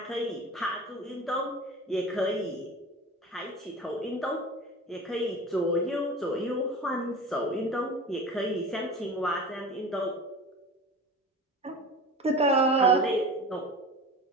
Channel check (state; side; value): normal; both; correlation 0.35